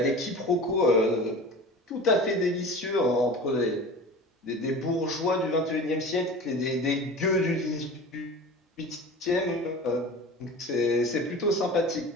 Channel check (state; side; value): normal; both; correlation 0.36